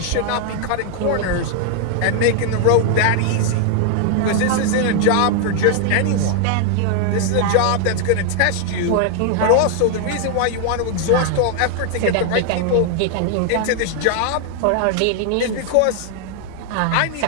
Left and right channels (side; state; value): both; different; correlation 0.00